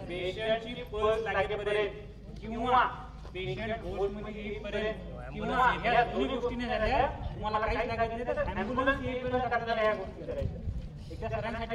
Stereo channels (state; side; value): identical; both; correlation 1.00